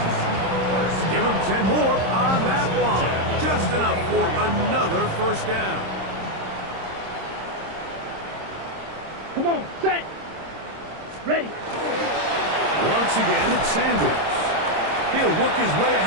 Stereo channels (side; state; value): left; late; 26 ms